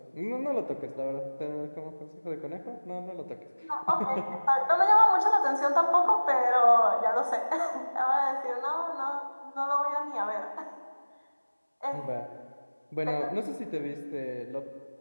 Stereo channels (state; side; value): inverted; both; correlation -1.00